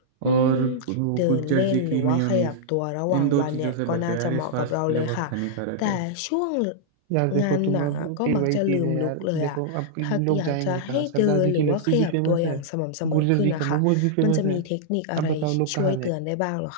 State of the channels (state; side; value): different; both; correlation -0.02